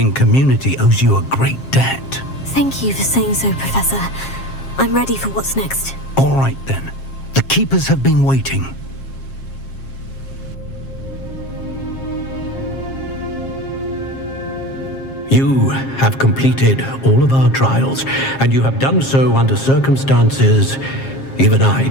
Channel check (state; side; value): late; right; 7.5 ms